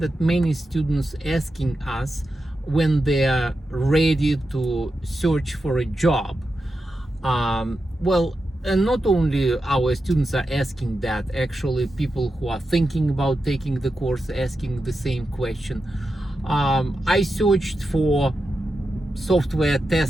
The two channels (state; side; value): normal; both; correlation 0.89